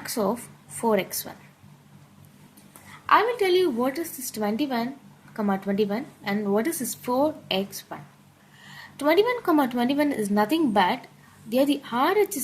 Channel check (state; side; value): identical; both; correlation 1.00